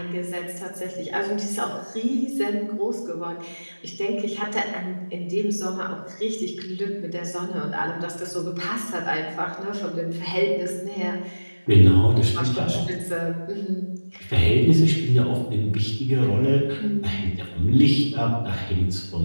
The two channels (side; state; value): both; inverted; correlation -1.00